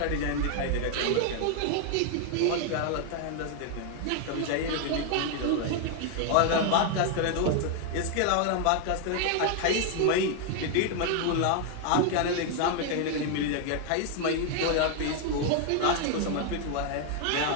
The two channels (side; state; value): both; different; correlation 0.00